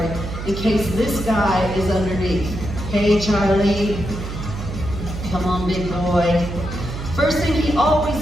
in case this guy is underneath. Hey, Charlie. Come on, big boy. First thing he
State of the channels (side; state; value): right; noise; hum, 7 dB below the sound